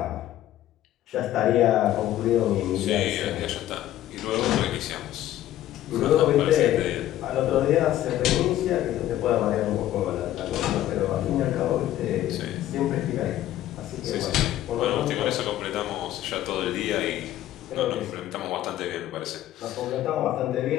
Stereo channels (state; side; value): quieter; right; 13.2 dB